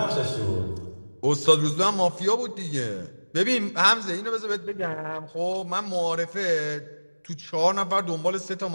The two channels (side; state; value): both; inverted; correlation -1.00